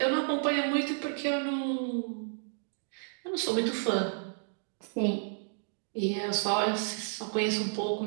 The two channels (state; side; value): silent; left; digital silence